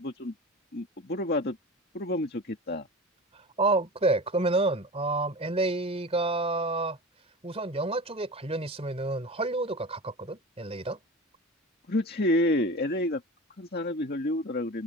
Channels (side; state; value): both; normal; correlation 0.32